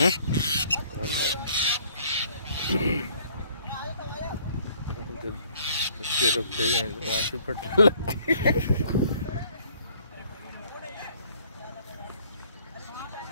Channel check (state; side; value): inverted; both; correlation -0.60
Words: रुकते हैं फटने लगती है।